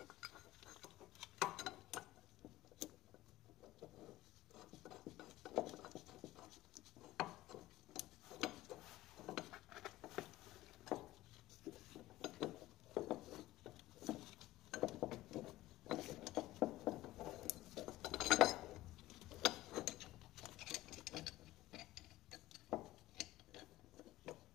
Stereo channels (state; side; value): quieter; right; 16.4 dB